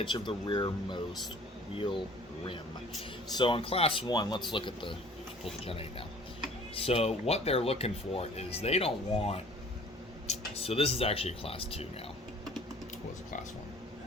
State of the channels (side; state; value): both; normal; correlation 0.51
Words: of the rearmost wheel rim. So on class 1, let's look at the, pull the Gen 8 now. So what they're looking for is they don't want, so this is actually a class 2 now. It was a class